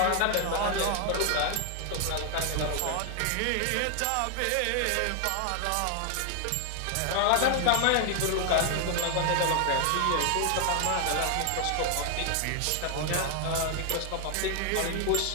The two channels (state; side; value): different; both; correlation 0.00